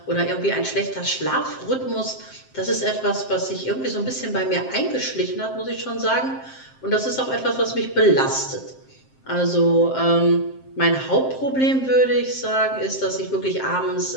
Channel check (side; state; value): right; late; 7.6 ms